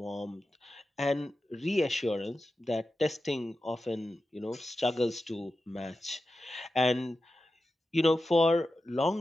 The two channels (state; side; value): normal; both; correlation 0.92